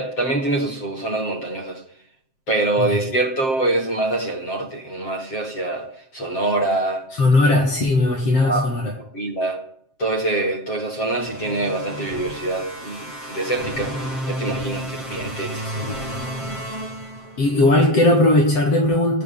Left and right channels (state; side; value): late; right; 7.6 ms